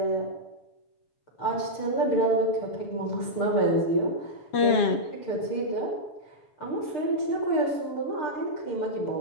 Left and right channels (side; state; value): right; late; 7.3 ms